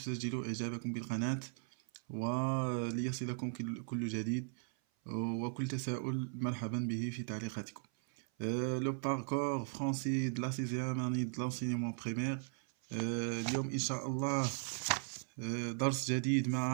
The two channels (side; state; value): left; silent; 53 dB below the other